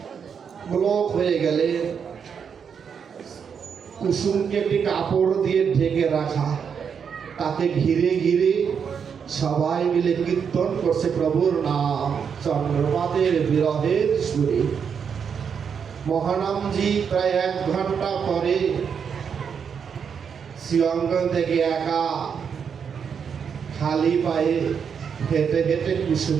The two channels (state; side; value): quieter; left; 6.9 dB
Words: ব্লক হয়ে গেলে কুসুমকে একটি কাপড় দিয়ে ঢেকে রাখা, তাকে ঘিরে ঘিরে সবাই মিলে কীর্তন করছে প্রভুর নাম চন্দ্রমাদের বিরহের সুরে। মহানামজি প্রায় 1 ঘন্টা পরে শ্রীঅঙ্গন থেকে একা খালি পায়ে হেঁটে হেঁটে